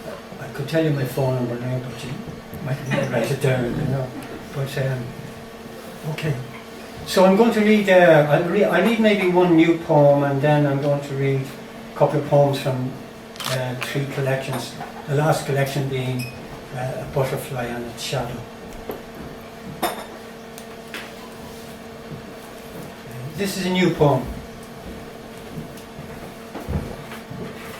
I could tell you my phone number now, but you might need to write it down. But okay. So I'm going to read. I'll read maybe one new poem, and then I'm going to read a couple of poems from 3 collections. The last collection being A Butterfly and Its Shadow. This is a new poem.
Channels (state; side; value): identical; both; correlation 1.00